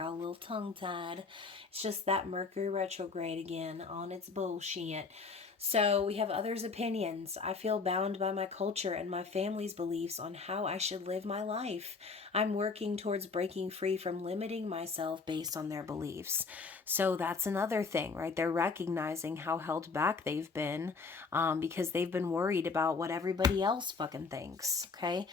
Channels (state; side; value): quieter; right; 4.6 dB